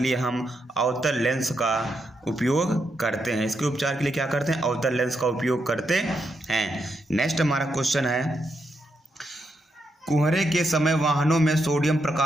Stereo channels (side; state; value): both; normal; correlation 0.82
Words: हम अवतल लेंस का उपयोग करते हैं। इसके उपचार के लिए क्या करते हैं? अवतल लेंस का उपयोग करते हैं। नेक्स्ट हमारा क्वेश्चन है, कोहरे के समय वाहनों में सोडियम